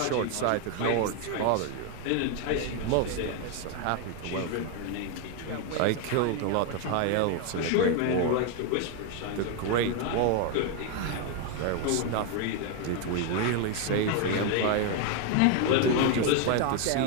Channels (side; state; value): both; different; correlation 0.01